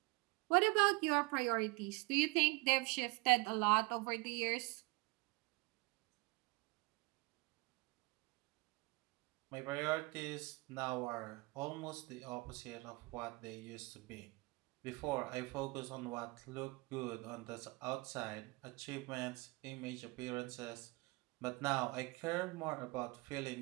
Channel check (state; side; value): quieter; left; 25.8 dB